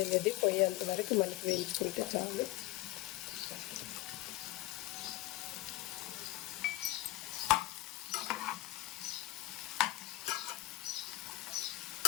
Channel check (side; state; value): right; quieter; 17.8 dB